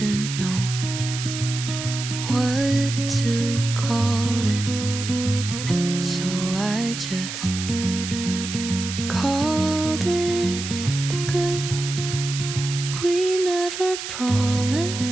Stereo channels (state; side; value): noise; right; hiss, 7 dB below the sound